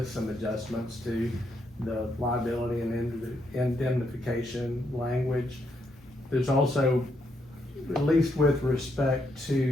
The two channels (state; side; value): normal; both; correlation 0.77